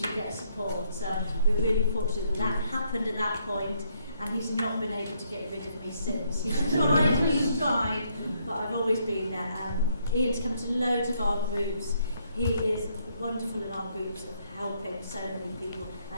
get support. So we're really fortunate that happened at that point, and he's not been able to get rid of me since. He's tried, but I've always been there. Ian's come to loads of our groups. He is wonderful in our groups of helping so many people.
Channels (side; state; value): both; inverted; correlation -0.72